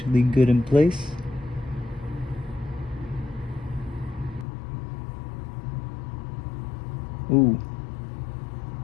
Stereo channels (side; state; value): right; drops out; at 4.5 s